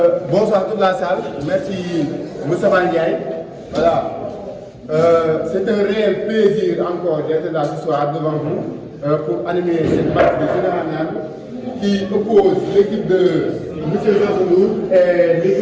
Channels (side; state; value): both; identical; correlation 1.00